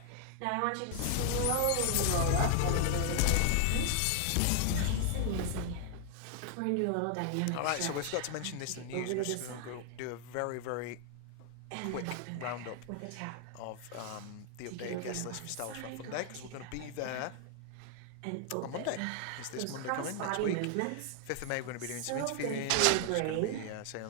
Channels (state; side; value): different; both; correlation 0.00